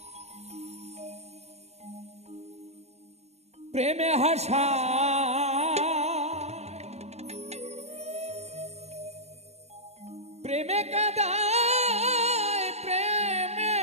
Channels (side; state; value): left; late; 0.31 ms